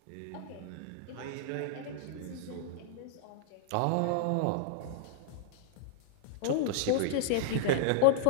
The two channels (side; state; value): both; different; correlation -0.01